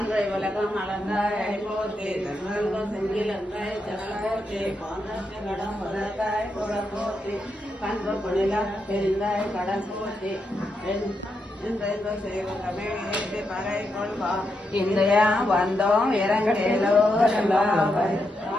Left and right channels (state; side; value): normal; both; correlation 0.83